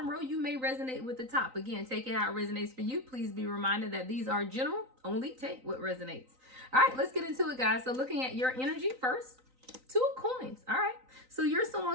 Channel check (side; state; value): left; late; 3.9 ms